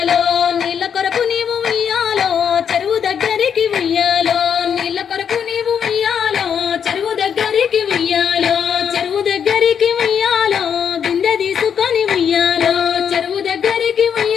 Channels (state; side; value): quieter; right; 7.7 dB